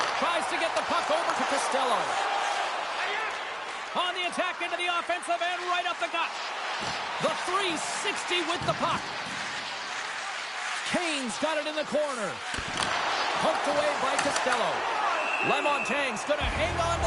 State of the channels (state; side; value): identical; both; correlation 1.00